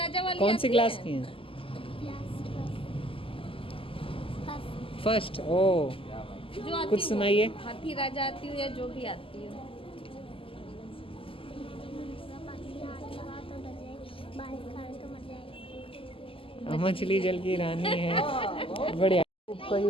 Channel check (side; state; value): right; late; 0.26 ms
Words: वाली कौन सी आती क्लास है? की हैं? फर्स्ट। ओ जो आती कुछ हो। सुनाइए। हाथी राजा आती हो या जो भी आती हो। मछली जल की रानी है। बढ़िया।